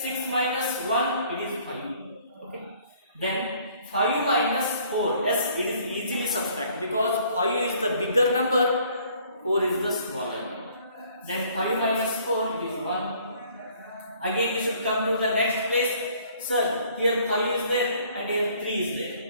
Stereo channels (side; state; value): both; inverted; correlation -0.59